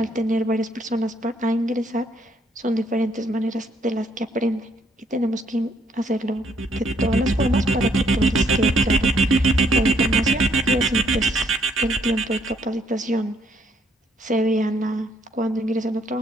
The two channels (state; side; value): normal; both; correlation 0.68